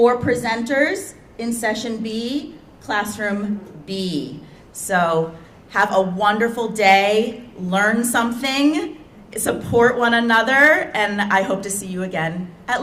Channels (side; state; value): both; identical; correlation 1.00